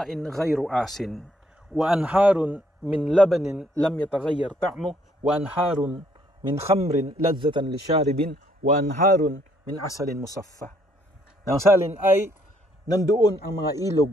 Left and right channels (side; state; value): both; normal; correlation 0.68